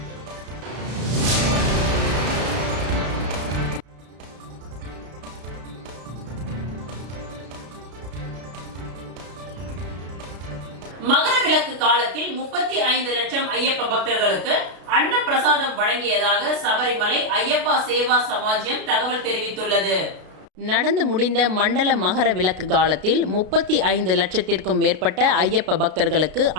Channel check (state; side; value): late; left; 33 ms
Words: மகர விளக்கு காலத்தில் 35 லட்சம் ஐயப்ப பக்தர்களுக்கு அன்ன பிரசாதம் வழங்கியதாக சபரிமலை ஐயப்பா சேவா சமாஜ்யம் தகவல் தெரிவித்துள்ளது. நடந்து முடிந்த மண்டல மகர விளக்கு காலத்தில் 35 லட்சத்திற்கும் மேற்பட்ட ஐயப்ப பக்தர்களுக்கு